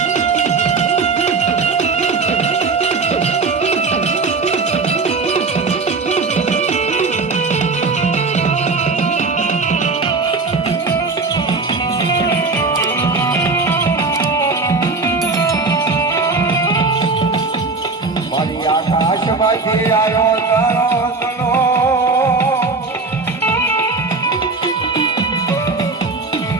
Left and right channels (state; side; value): quieter; left; 4.0 dB